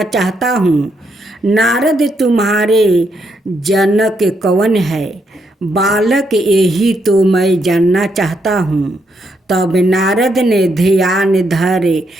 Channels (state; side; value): normal; both; correlation 0.78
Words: चाहता हूँ। नारद, तुम्हारे जनक कौन है? बालक, यही तो मैं जानना चाहता हूँ। तब नारद ने ध्यान धरे